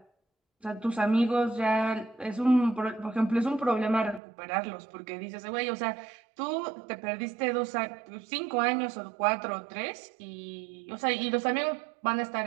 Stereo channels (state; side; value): drops out; left; at 4.2 s